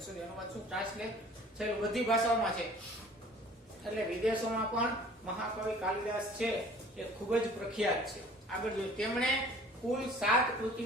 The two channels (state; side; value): normal; both; correlation 0.50